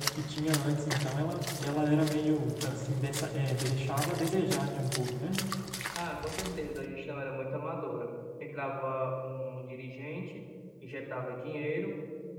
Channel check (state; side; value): identical; both; correlation 1.00